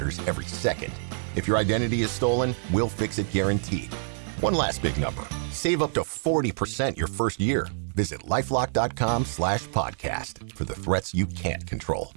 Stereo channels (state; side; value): silent; left; digital silence